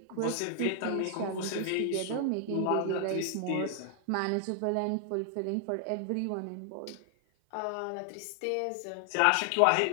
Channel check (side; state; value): both; different; correlation 0.00